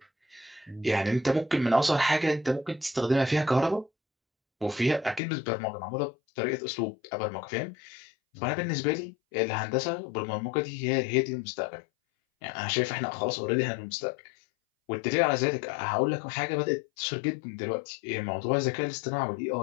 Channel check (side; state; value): right; drops out; at 5.2 s